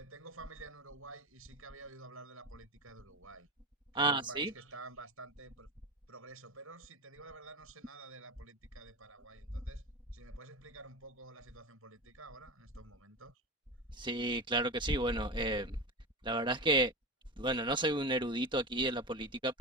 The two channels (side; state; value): both; normal; correlation 0.24